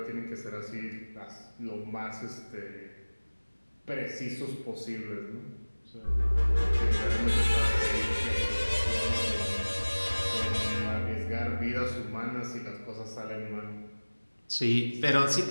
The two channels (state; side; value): inverted; both; correlation -1.00